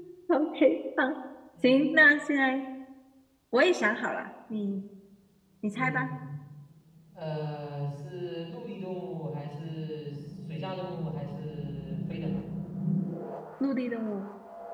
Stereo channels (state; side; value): identical; both; correlation 1.00